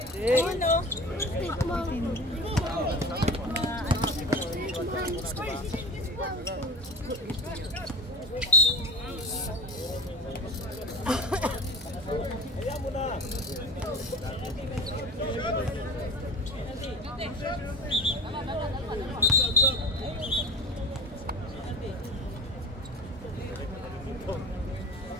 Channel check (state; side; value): normal; both; correlation 0.32